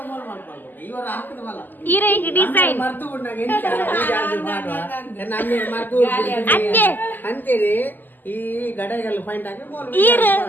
ಇರ ಈಗ ಡಿಸೈನ್ ಅಂತೇಳಿ ಈ ಗಡಗಲ್ಲ ಪಾಯಿಂಟ್ ಹಾಕಿ ಈರ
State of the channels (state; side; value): late; right; 0.088 ms